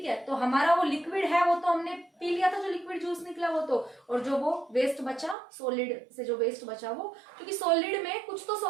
है। तो हमारा वो लिक्विड है वो तो हमने पी लिया था, जो लिक्विड जूस निकला वो तो, और जो वो वेस्ट बचा, सॉलिड से जो वेस्ट बचा वो, क्योंकि सॉलिड में कुछ तो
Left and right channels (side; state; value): left; drops out; at 5.4 s